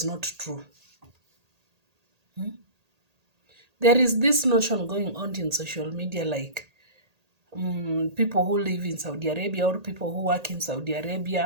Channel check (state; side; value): late; left; 1.8 ms